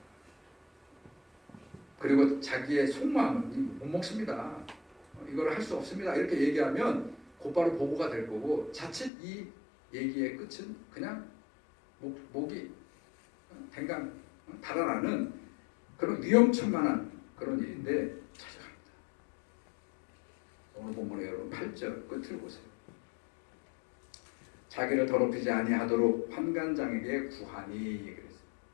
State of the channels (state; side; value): drops out; right; at 9.1 s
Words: 그리고 자기의 속마음은 못 먹습니다. 이걸 할 수 없습니다. 이렇게 얘기하면 곧바로 보고가 될 거고, 자칫 이 얘기의 끝은 그냥 목이 댕강 달아나는 그런 위험천만한 그런 일인데 찾아갑니다. 오늘 본문의 여러분 8절 끝을 보세요. 자기를 더럽히지 아니하도록 환관장에게 구하니 그랬어요.